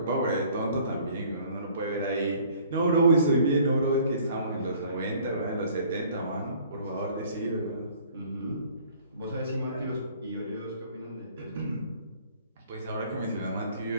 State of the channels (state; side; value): inverted; both; correlation -0.55